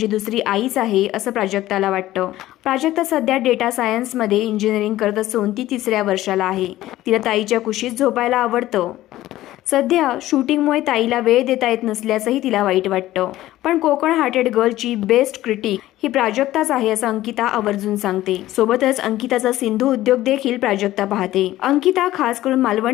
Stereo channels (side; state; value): right; quieter; 15.2 dB